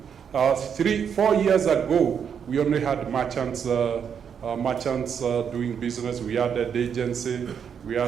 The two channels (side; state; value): left; quieter; 7.5 dB